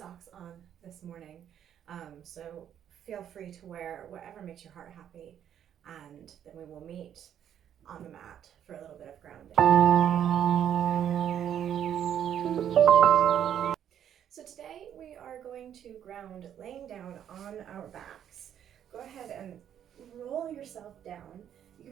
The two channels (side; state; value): left; quieter; 9.7 dB